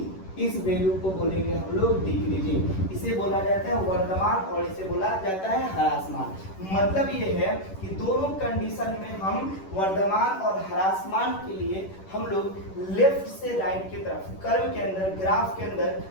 इस वैल्यू को बोलेंगे हम लोग डिक्रीजिंग। इसे बोला जाता है वर्तमान और इसे बोला जाता है ह्रास मान। मतलब ये है कि दोनों कंडीशन में हम वर्तमान और ह्रास मान के लिए हम लोग लेफ्ट से राइट की तरफ, कर्व के अंदर, ग्राफ के अंदर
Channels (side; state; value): right; late; 11 ms